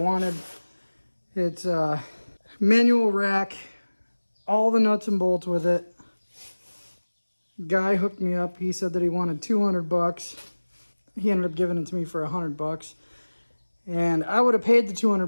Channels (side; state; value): both; inverted; correlation -1.00